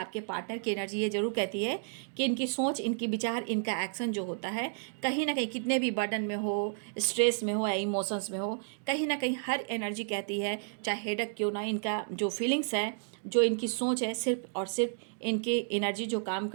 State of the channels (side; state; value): left; silent; digital silence